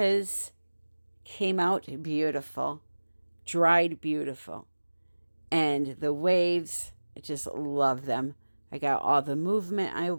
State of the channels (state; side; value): inverted; both; correlation -1.00